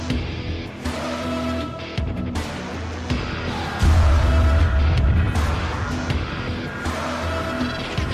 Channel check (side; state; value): both; identical; correlation 1.00